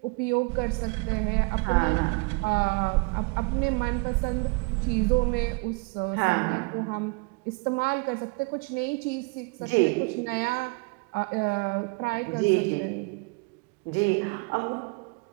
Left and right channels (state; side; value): quieter; left; 31.1 dB